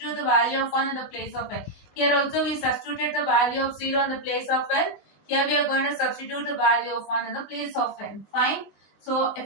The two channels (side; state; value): right; late; 19 ms